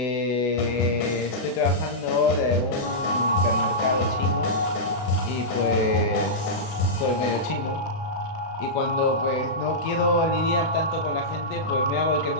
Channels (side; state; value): right; late; 32 ms